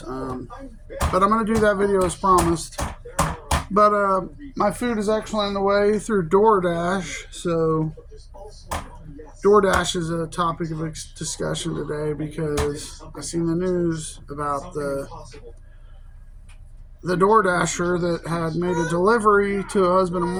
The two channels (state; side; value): identical; both; correlation 1.00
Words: But I'm going to do that video as promised. But my food is actually on the way through DoorDash, so DoorDash is a topic of discussion today because I seen the news about the DoorDasher that had made a delivery to a husband and